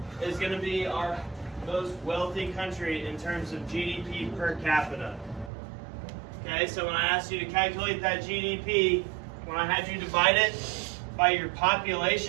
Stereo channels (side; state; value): left; drops out; at 5.5 s